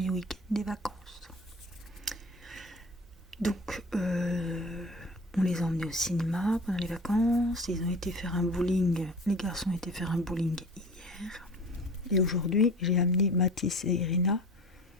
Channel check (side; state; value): both; normal; correlation 0.39